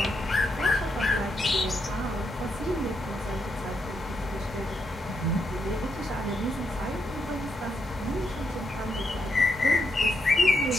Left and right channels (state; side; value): normal; both; correlation 0.80